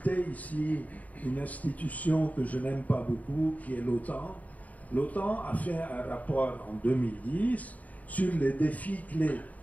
ici une institution que je n'aime pas beaucoup, qui est l'OTAN. L'OTAN a fait un rapport en 2010 sur les défis clés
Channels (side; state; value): right; late; 0.073 ms